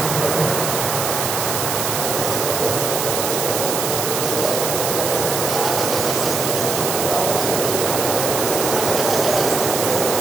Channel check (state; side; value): noise; right; hiss, 2 dB below the sound